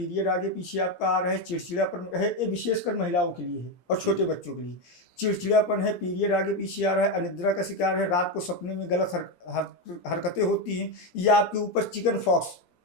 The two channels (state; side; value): late; right; 17 ms